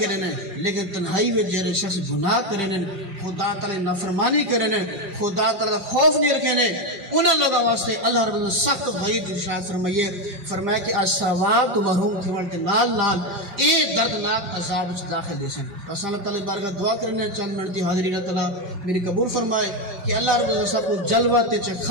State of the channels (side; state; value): left; late; 5.5 ms